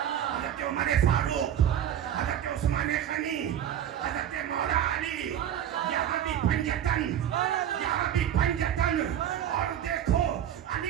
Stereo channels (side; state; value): left; quieter; 10.3 dB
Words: عمر فاروق، حضرت عثمان غنی، حضرت مولا علی، یہاں بھی پنجتن، یہاں بھی پنجتن۔ اور دیکھو علی